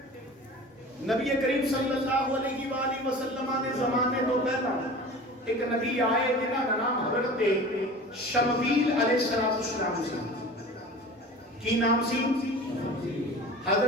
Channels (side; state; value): both; normal; correlation 0.39